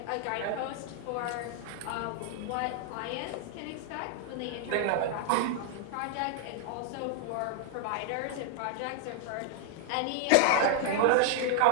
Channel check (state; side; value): different; both; correlation -0.01